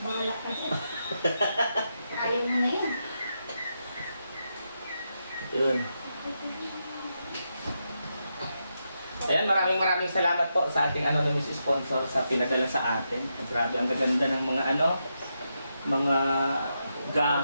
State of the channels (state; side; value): inverted; both; correlation -0.84